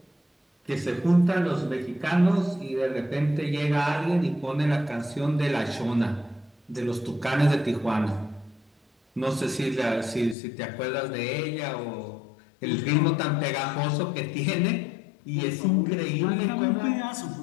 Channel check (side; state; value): right; drops out; at 10.4 s